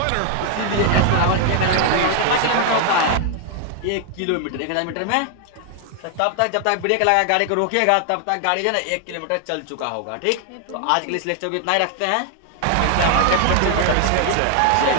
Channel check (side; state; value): both; different; correlation 0.00